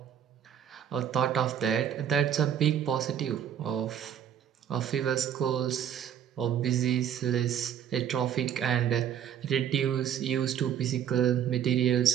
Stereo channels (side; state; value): left; quieter; 9.3 dB